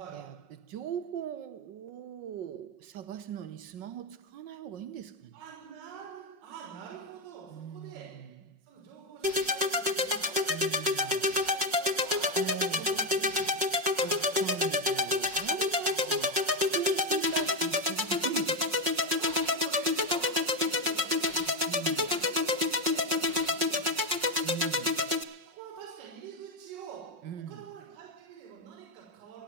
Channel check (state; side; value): late; left; 5.5 ms